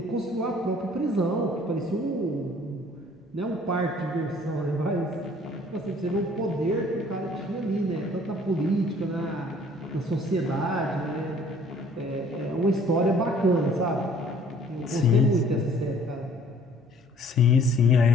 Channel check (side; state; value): both; normal; correlation 0.55